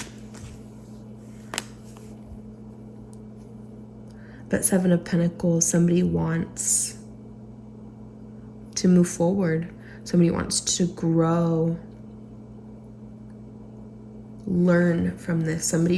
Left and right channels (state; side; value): identical; both; correlation 1.00